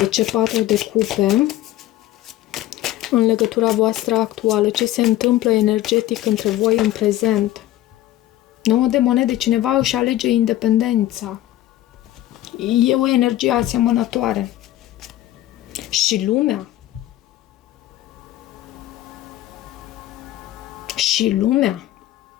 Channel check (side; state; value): right; quieter; 14.4 dB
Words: ce 4 de cupe? În legătura voastră actuală, ce se întâmplă energetic între voi în prezent? 9 de monede, cineva își alege independența. E o energie asemănătoare. Și lumea. Și lumea.